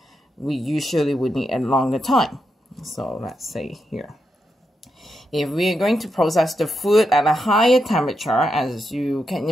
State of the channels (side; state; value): both; normal; correlation 0.84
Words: we usually would need a longer time. So let's say here. If we are going to process the food at a higher temperature, as you can